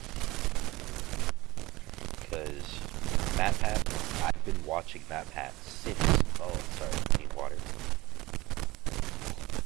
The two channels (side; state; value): left; quieter; 20.0 dB